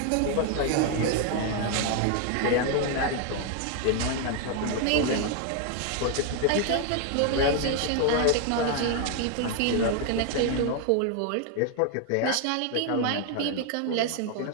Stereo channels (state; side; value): different; both; correlation 0.00